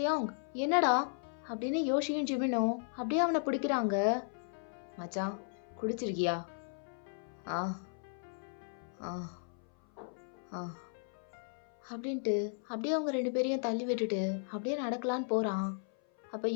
என்னடா அப்படின்னு யோசியும் ஜிமினும் அப்படியே அவனை பிடிக்கிறாங்க. மச்சான், குடிச்சிருக்கியா? ஆ ஆ ஆ அப்படின்ட்டு அப்படியே அவங்க ரெண்டு பேரையும் தள்ளி விட்டுட்டு அப்படியே நடக்கலான்னு போகிறான். அப்போ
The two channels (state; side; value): silent; right; 54 dB below the other